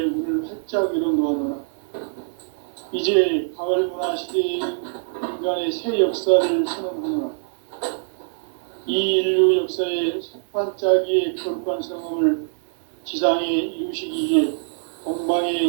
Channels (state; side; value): silent; left; digital silence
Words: 문을 활짝 열어놓아노라. 이제 가을 문화 시대의 인간의 새 역사를 선언하노라. 이 인류 역사의 색반짜기의 거룩한 성험을 지상에 이루시기 위해